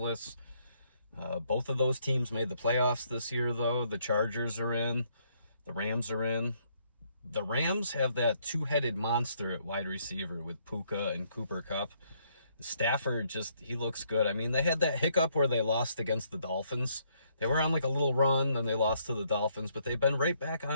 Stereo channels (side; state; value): both; inverted; correlation -0.70